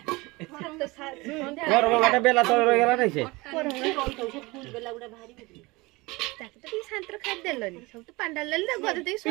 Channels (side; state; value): left; quieter; 23.3 dB